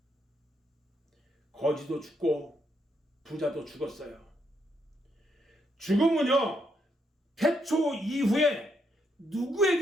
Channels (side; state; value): both; normal; correlation 0.77